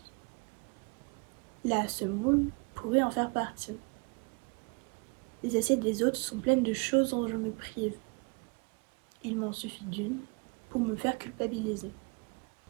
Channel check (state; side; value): quieter; left; 32.0 dB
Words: La semoule pourrait en faire partie. Les assiettes des autres sont pleines de choses dont je me prive. Il m'en suffit d'une pour me faire culpabiliser.